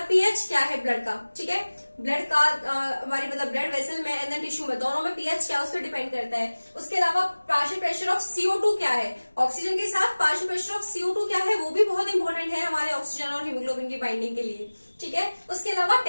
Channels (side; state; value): both; inverted; correlation -1.00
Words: पीएच क्या है ब्लड का, ठीक है। ब्लड का हमारी मतलब ब्लड वेसल में एंड टिश्यू में, दोनों में पीएच क्या है उस पर डिपेंड करता है। उसके अलावा पार्शियल प्रेशर ऑफ CO2 क्या है, ऑक्सीजन के साथ पार्शियल प्रेशर ऑफ CO2 क्या है, वो भी बहुत इंपॉर्टेंट है हमारे ऑक्सीजन और हीमोग्लोबिन की बाइंडिंग के लिए, ठीक है। उसके अलावा